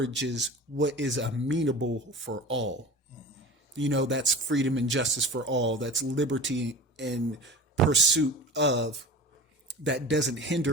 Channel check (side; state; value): both; normal; correlation 0.35